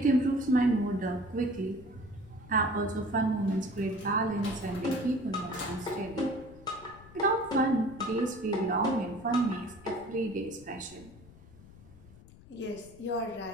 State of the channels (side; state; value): left; noise; rumble, 21 dB below the sound